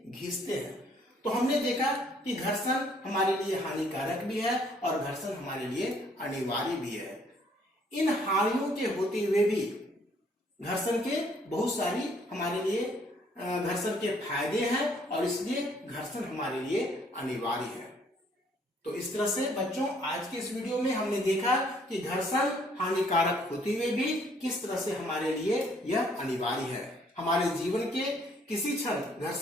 घिसते हैं। तो हमने देखा कि घर्षण हमारे लिए हानिकारक भी है और घर्षण हमारे लिए अनिवार्य भी है। इन हानियों के होते हुए भी घर्षण के बहुत सारी हमारे लिए घर्षण के फायदे हैं और इसलिए घर्षण हमारे लिए अनिवार्य है। तो इस तरह से बच्चों आज के इस वीडियो में हमने देखा कि घर्षण हानिकारक होते हुए भी किस तरह से हमारे लिए यह अनिवार्य है। हमारे जीवन के किसी क्षण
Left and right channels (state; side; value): normal; both; correlation 0.64